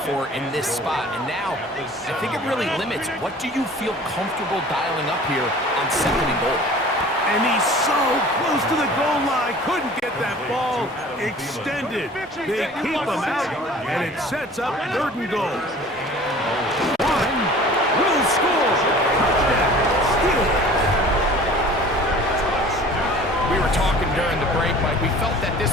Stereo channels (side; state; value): both; normal; correlation 0.46